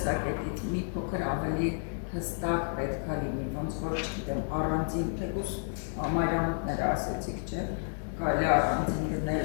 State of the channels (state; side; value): silent; right; digital silence